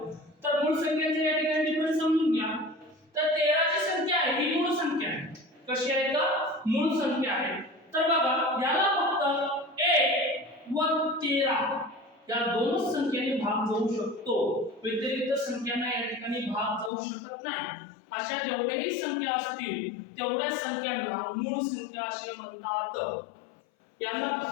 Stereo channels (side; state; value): right; drops out; at 16.9 s